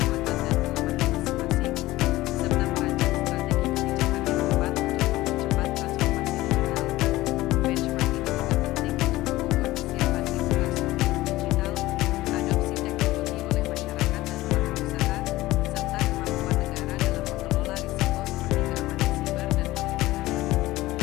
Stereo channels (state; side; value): quieter; right; 17.7 dB